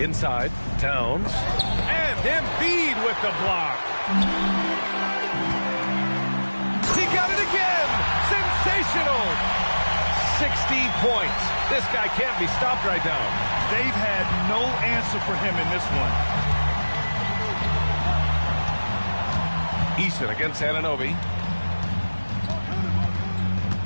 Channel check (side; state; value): both; inverted; correlation -1.00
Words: Inside. Towns. And Embiid with the block. He got it again. Sensational. 60 points. This guy can't be stopped right now. They've had no answer for him in this one. Eason against Anunoby.